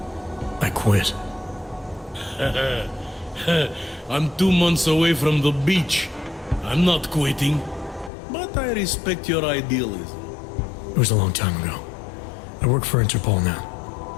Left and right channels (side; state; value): right; drops out; at 8.1 s